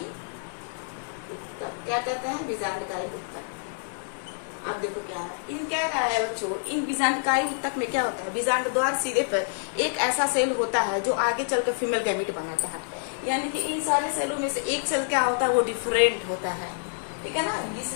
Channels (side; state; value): right; silent; digital silence